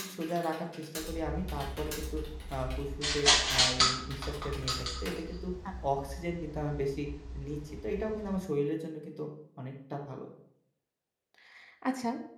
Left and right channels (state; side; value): identical; both; correlation 1.00